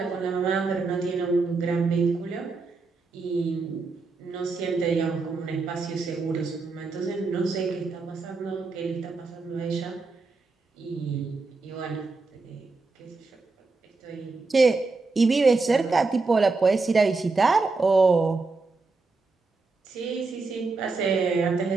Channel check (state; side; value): quieter; left; 3.9 dB